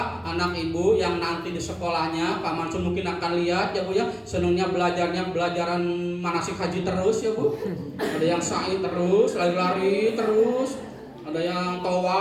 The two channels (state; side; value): identical; both; correlation 1.00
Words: anak ibu yang nanti di sekolahnya Pak Mansur mungkin akan lihat ya Bu ya, senangnya belajarnya belajaran manasik haji terus ya Bu. Ada yang sa'i terus, lari-lari terus. Ada yang